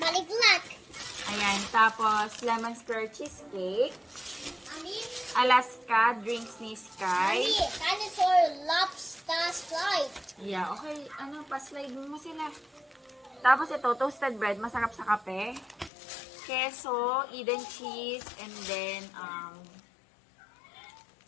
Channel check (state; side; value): drops out; right; at 15.9 s